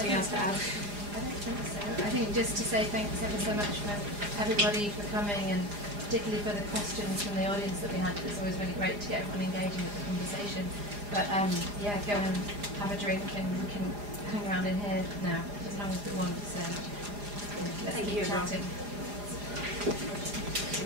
else to add? I don't think so. I think just to say thanks ever so much for everybody for coming, and particularly for the questions from the audience that we had. It's always really great to get everyone engaging with the conversation. But yeah, go and have a drink, and we can hang around in here now as long as we want. So yeah, let's keep chatting.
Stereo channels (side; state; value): left; late; 4.9 ms